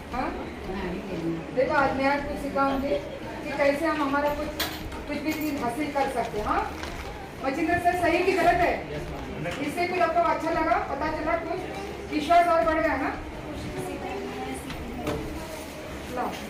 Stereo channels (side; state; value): both; identical; correlation 1.00